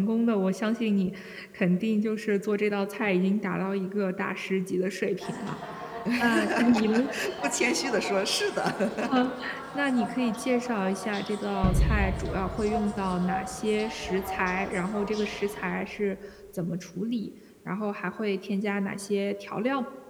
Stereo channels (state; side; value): identical; both; correlation 1.00